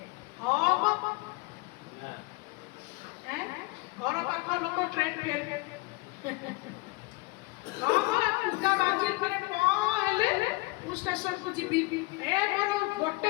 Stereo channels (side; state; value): right; quieter; 23.6 dB